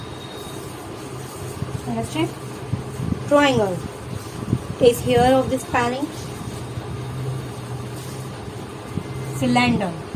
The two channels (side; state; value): both; identical; correlation 1.00